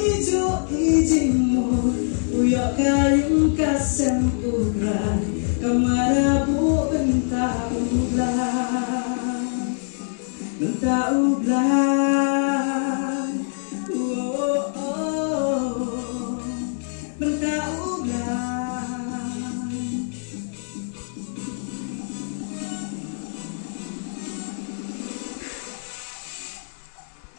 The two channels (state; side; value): silent; right; digital silence